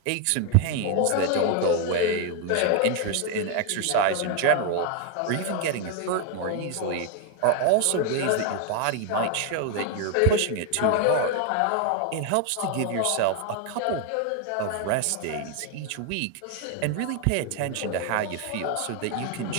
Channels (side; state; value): both; different; correlation 0.01